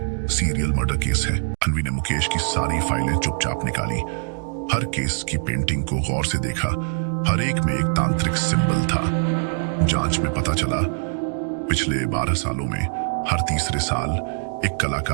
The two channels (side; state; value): left; silent; digital silence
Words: सीरियल मर्डर केस है। अनवी ने मुकेश की सारी फाइलें चुपचाप निकाली, हर केस की पेंटिंग को गौर से देखा। हर एक में एक तांत्रिक सिंबल था। जांच में पता चला पिछले 12 सालों में हर तीसरे साल एक